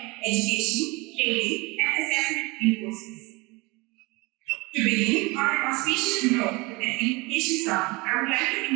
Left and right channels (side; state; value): left; quieter; 25.1 dB